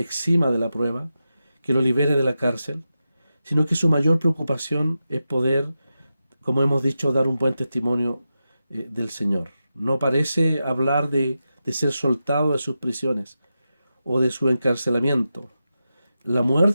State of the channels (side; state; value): both; inverted; correlation -0.90